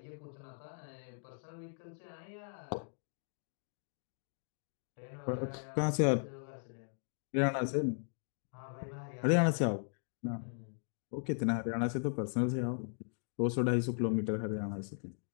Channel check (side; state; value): right; silent; 53 dB below the other